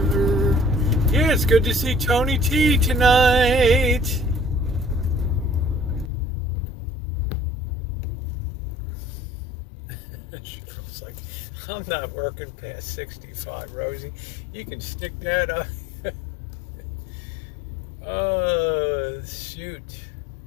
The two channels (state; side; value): drops out; right; at 6.1 s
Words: Yeah, it's good to see Tony T tonight. Cheryl's like, I'm not working past 65, Rosie. You can stick that up. Oh, shoot.